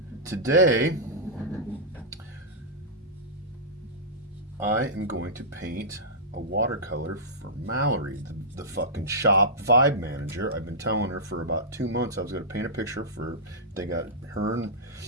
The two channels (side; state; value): both; normal; correlation -0.13